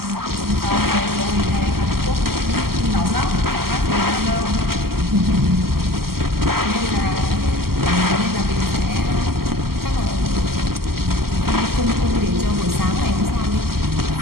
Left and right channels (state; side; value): late; left; 0.94 ms